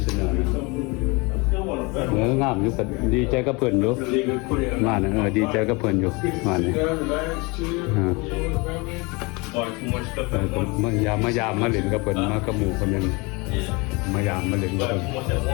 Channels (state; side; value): quieter; right; 27.1 dB